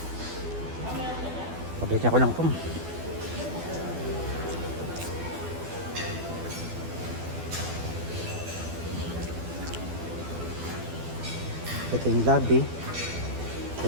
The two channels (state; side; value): late; left; 12 ms